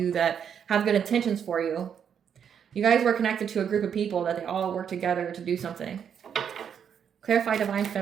that have good intentions for you. You guys were connected to a group of people that they all work together to do something. Clarify divine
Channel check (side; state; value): left; quieter; 8.0 dB